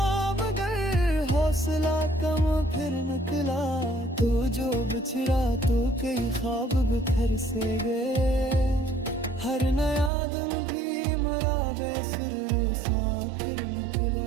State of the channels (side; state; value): left; drops out; at 10.1 s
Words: मगर हौसला कम फिर निकला। तू जो बिछड़ा तो कई ख्वाब बिखर से गए, हर नया दिन भी मरा बेसुर सा फिर